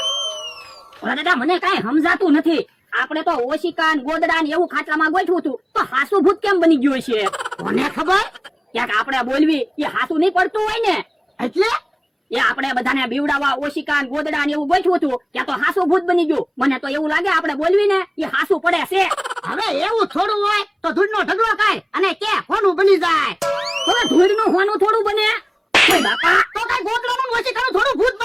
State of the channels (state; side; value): identical; both; correlation 1.00